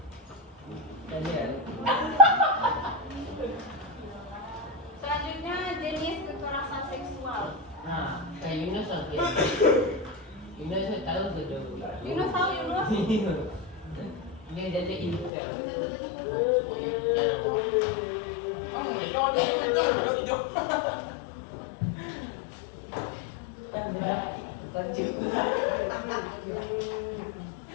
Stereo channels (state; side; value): drops out; right; at 15.3 s